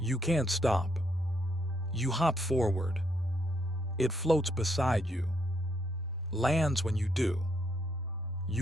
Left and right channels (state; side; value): normal; both; correlation 0.75